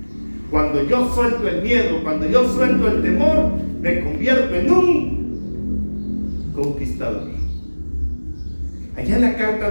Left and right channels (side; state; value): both; inverted; correlation -1.00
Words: Cuando yo suelto el miedo, cuando yo suelto el temor, me convierto en un conquistador. Allá en la carta